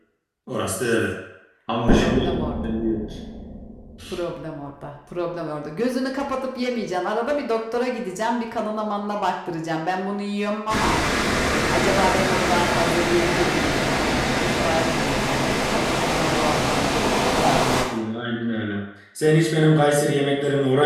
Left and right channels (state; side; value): identical; both; correlation 1.00